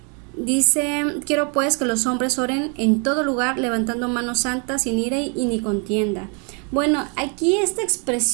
Dice, quiero pues que los hombres oren en todo lugar, levantando manos santas, sin ira y ni contienda. Bueno, aquí esta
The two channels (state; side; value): quieter; left; 35.8 dB